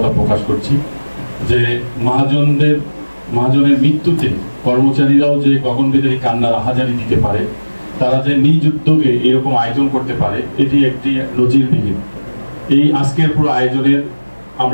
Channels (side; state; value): both; inverted; correlation -1.00